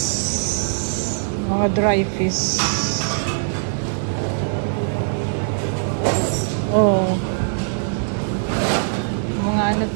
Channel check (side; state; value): left; silent; 57 dB below the other